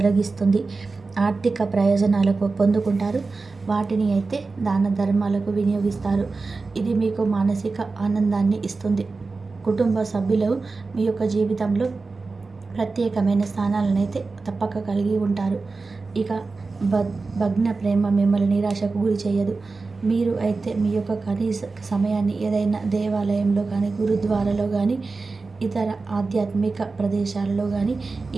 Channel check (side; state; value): left; quieter; 4.0 dB